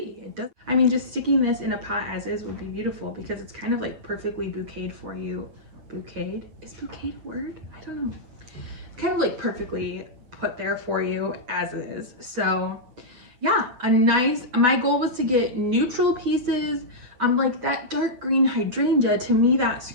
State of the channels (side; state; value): left; late; 8.2 ms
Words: It does. I mean, just sticking this in a pot as is would be beautiful because it's kind of like perfectly bouqueted for you. Bouqueted? Is bouquet a word? I don't know. It's kind of like perfectly put there for you as is. So yeah, my goal was to get neutral pieces. Like that dark green hydrangea, to me that